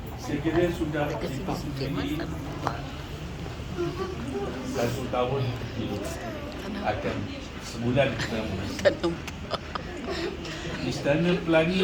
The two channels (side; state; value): both; identical; correlation 1.00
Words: Saya kira sudah dipersetujui 1 tahun hidup akan sebulan kita Istana